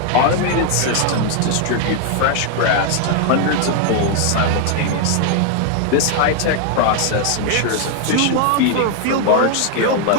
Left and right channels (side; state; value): both; different; correlation 0.00